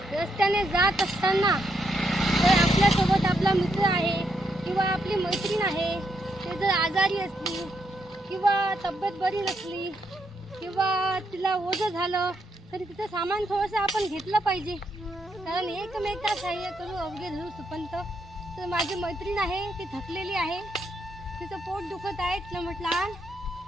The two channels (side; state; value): both; normal; correlation 0.78